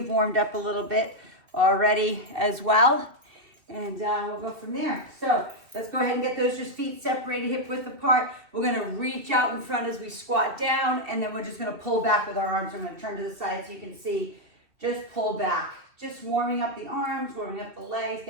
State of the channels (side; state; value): left; late; 2.7 ms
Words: warmed up a little bit already as well. And we'll go from there. So let's go ahead and get those just feet separated, hip width apart. We're gonna reach out in front as we squat down, and then we're just gonna pull back with our arms. I'm gonna turn to the side so you can see. Just pull back. Just warming up the arms, warming up the legs,